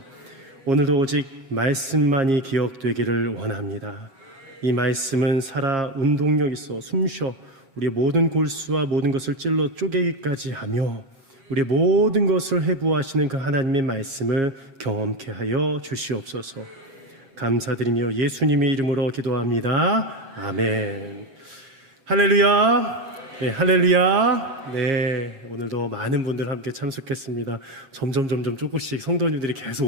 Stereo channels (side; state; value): left; late; 8.0 ms